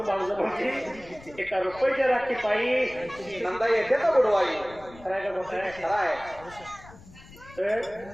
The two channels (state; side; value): noise; left; rumble, 20 dB below the sound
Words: भाऊचं म्हणते एका रुपयाच्या राखी पायी नंदा येते तर बुडवाई करायला मोठ आहे खरं आहे तर